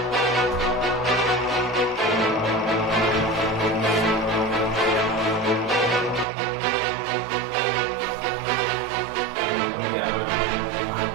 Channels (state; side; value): drops out; left; at 6.2 s